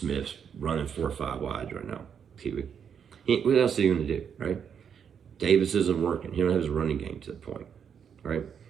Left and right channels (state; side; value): quieter; left; 7.6 dB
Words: running 4 or 5 wides right now. What else are you going to do, right? Davis isn't working. He don't have his running game to the point, right?